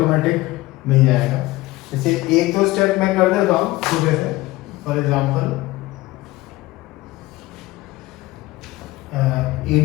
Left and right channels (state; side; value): quieter; right; 18.8 dB